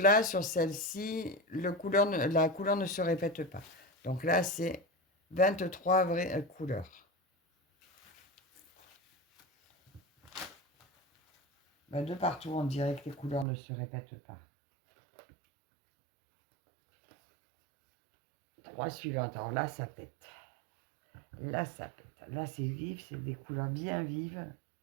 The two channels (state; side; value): drops out; left; at 13.5 s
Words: sur celle-ci, la couleur ne se répète pas. Donc là, c'est 23 vraies couleurs. Ben, de partout, on dirait que les couleurs ne se répètent pas. 3 suivantes. Alors là, ça pète. Là, ça pète. Là, c'est vif, c'est des couleurs bien vives.